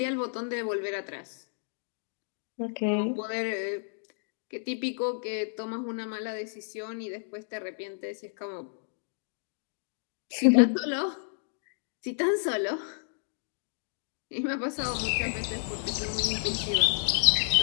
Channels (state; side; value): silent; right; digital silence